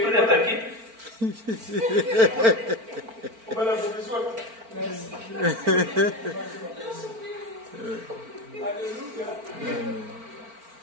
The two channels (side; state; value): left; late; 4.4 ms